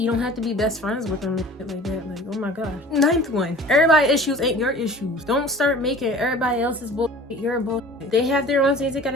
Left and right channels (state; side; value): normal; both; correlation 0.43